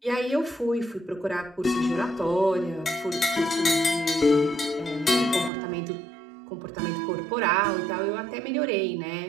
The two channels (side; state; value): left; drops out; at 5.5 s